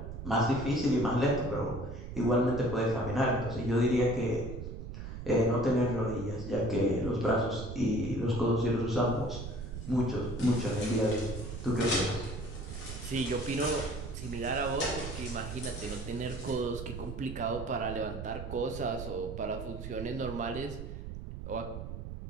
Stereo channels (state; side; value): noise; right; rumble, 8 dB below the sound